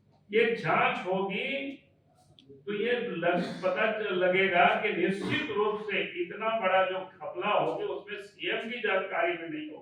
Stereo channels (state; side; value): identical; both; correlation 1.00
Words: ये जांच होगी तो ये पता लगेगा कि निश्चित रूप से इतना बड़ा जो घपला होगी उसमें सीएम की जानकारी में नहीं